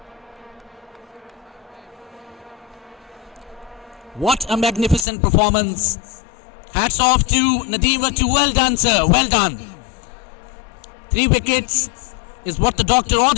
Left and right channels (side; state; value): right; drops out; at 5.1 s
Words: What a magnificent performance. Hats off to Nadeem Vattu. Well done, sir. Well done. 3 wickets is what the doctor